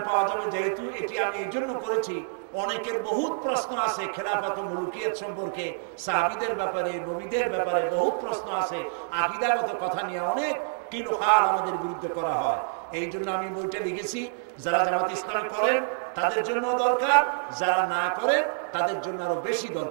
পাওয়া যাবে। যেহেতু এটি আমি এই জন্য করেছি, অনেকের বহুত প্রশ্ন আছে খেলাফত ও মুলুকিয়াত সম্পর্কে, সাহাবীদের ব্যাপারে, নবীদের ব্যাপারে বহুত প্রশ্ন আছে, আকীদাগত কথা নিয়ে অনেক কিলোকাল আমাদের বিরুদ্ধে করা হয়। এই জন্য আমি বইটা লিখেছি। যারা জামাত ইসলামী করেন তাদের জন্য দরকার, যারা না করেন তাদের জন্য আরো বেশি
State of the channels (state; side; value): silent; left; digital silence